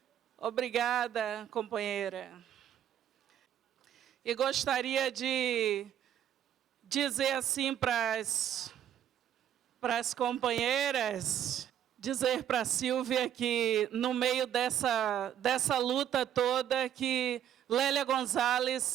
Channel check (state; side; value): quieter; left; 10.2 dB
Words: Obrigada, companheira. E gostaria de dizer assim para as companheiras, dizer para a Sílvia que no meio dessa luta toda que Lélia